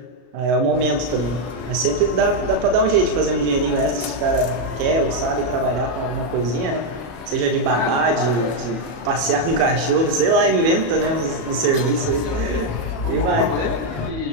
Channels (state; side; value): late; left; 34 ms